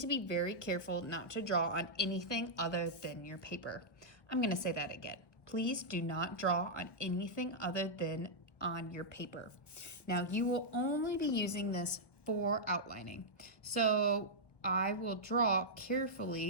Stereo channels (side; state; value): right; late; 1.1 ms